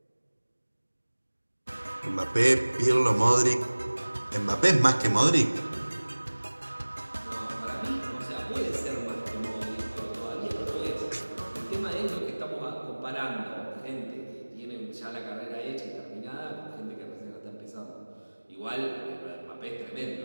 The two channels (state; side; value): inverted; both; correlation -1.00